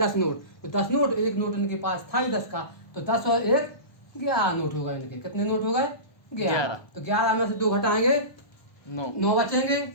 नोट, तो 10 नोट, 1 नोट इनके पास था ही 10 का, तो 10 और 1 11 नोट हो गए इनके, कितने नोट हो गए, 11। तो 11 में से 2 घटाएंगे, 9 बचेंगे,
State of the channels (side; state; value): right; late; 1.2 ms